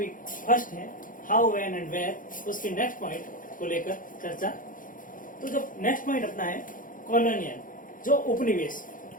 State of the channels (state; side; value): late; right; 0.39 ms